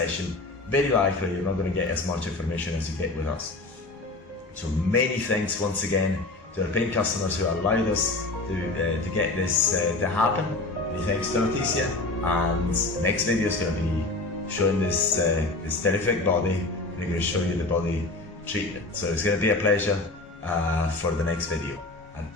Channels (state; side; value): quieter; right; 3.1 dB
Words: very likely you're not going to get as much information as you get with us. So many thanks once again to our paying customers who allowed us to get this to happen. Many thanks to Leticia. And next video is going to be showing this terrific body. We're going to show you the body treatment. So it's going to be a pleasure for the next video. And